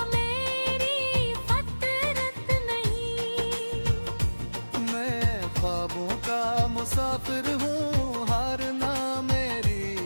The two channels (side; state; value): both; inverted; correlation -1.00